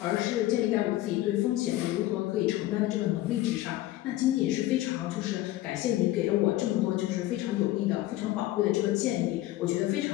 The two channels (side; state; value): right; quieter; 15.7 dB